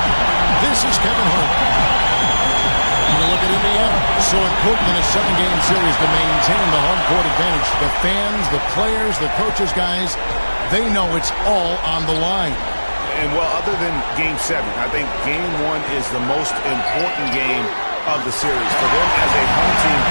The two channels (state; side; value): inverted; both; correlation -1.00